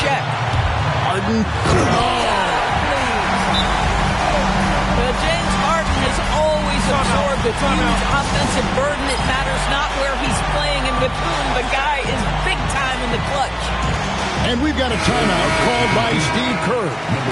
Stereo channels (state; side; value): identical; both; correlation 1.00